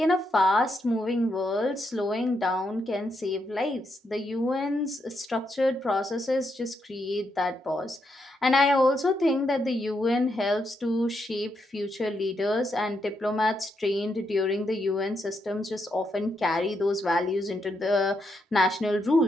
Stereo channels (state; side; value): normal; both; correlation 0.80